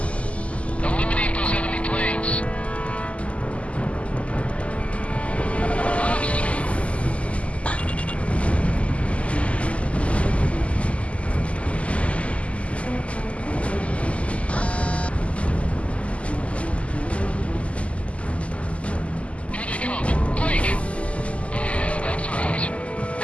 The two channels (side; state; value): right; late; 0.062 ms